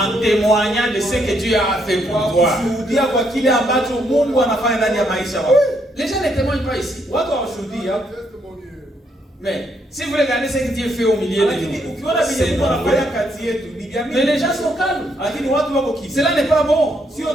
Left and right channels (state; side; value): normal; both; correlation 0.74